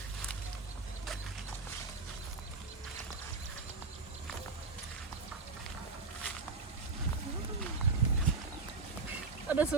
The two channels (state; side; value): quieter; left; 4.0 dB